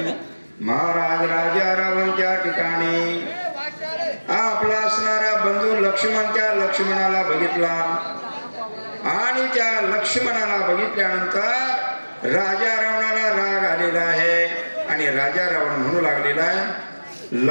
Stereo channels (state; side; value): inverted; both; correlation -1.00